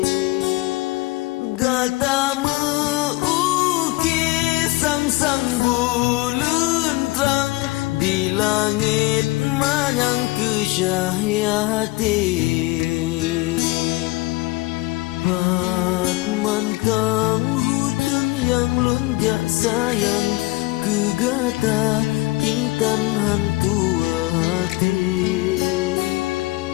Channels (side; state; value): right; quieter; 20.7 dB